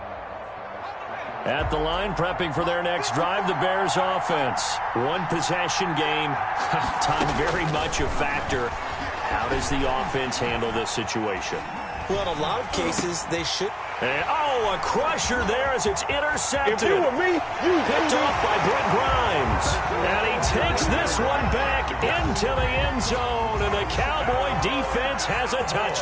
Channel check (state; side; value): identical; both; correlation 1.00